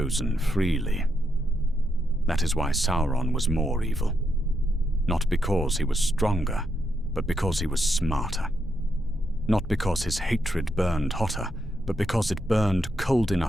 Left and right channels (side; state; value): both; normal; correlation 0.81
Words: freely. That is why Sauron was more evil. Not because he was stronger, but because he was smarter. Not because his hatred burned hotter, but because it burned cold